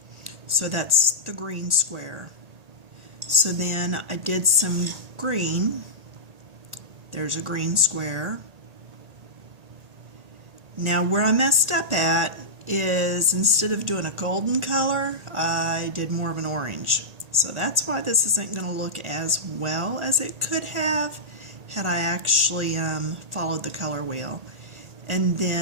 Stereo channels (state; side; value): late; left; 1.8 ms